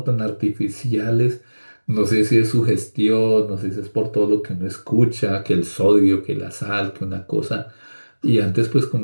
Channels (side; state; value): both; inverted; correlation -1.00